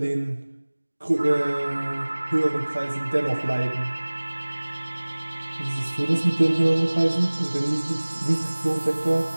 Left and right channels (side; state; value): both; inverted; correlation -1.00